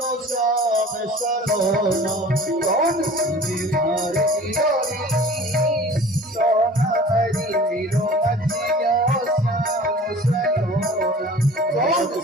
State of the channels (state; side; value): normal; both; correlation 0.44